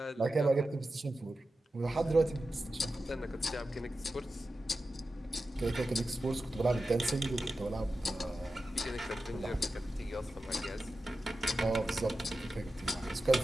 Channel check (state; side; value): normal; both; correlation 0.92